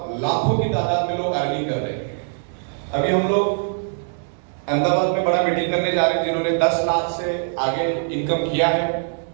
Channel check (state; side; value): silent; left; digital silence